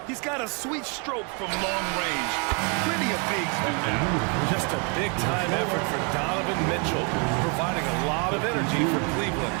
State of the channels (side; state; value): left; quieter; 35.1 dB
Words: He's got a sweet stroke from long range. Plenty of bigs do that. Just a big-time effort for Donovan Mitchell, providing a lot of energy for Cleveland.